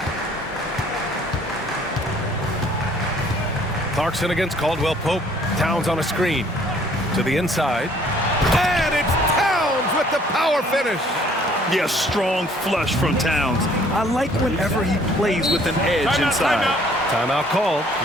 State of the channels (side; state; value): both; normal; correlation 0.59